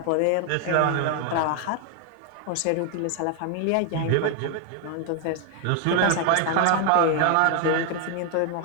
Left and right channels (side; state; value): both; different; correlation 0.00